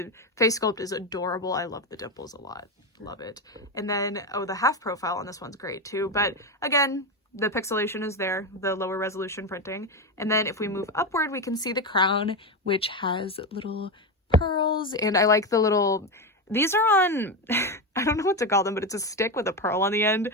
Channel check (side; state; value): both; normal; correlation 0.14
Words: face sculpt is adorable. I love the dimples a lot. Love it. And then, oh, the half profile on this one's great too, but again, the pixelation is there, the lower resolution printing. And then if we move upward, we can see the crown, which has little pearls, and I like the little, these are on I don't know what to call them, but it's a stick with a pearl on the end.